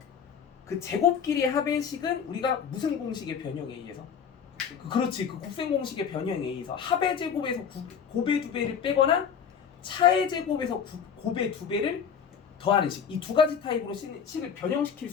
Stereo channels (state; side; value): quieter; right; 7.3 dB